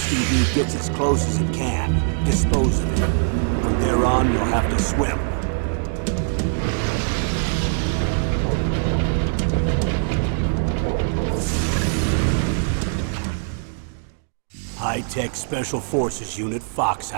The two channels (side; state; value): left; silent; 64 dB below the other